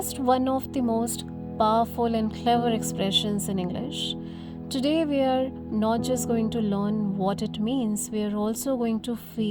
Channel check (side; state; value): both; identical; correlation 1.00